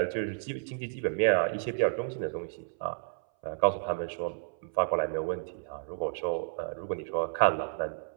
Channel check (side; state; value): left; silent; 57 dB below the other